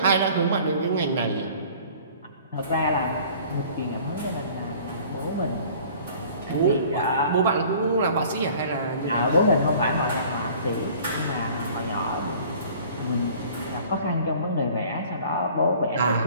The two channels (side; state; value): both; inverted; correlation -0.50